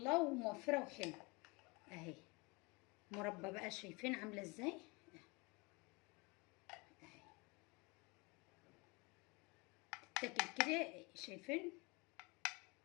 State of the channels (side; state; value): right; quieter; 27.1 dB